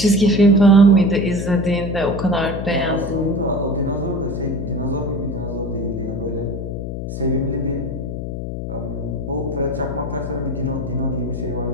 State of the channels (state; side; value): noise; left; hum, 5 dB below the sound